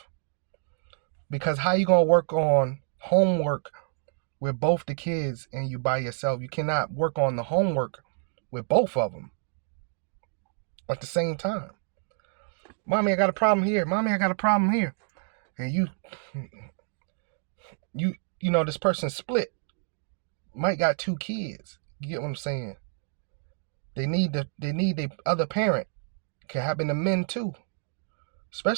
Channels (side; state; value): left; silent; 59 dB below the other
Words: Because how you gonna work on homework with both the kids and you by yourself? You cannot work on the homework with both of them at the same time. Mommy, I got a problem here. Mommy, I got a problem here. And you know, this person split. Might got 2 kids. You get what I'm saying? They need the other parent. Can happen to men too.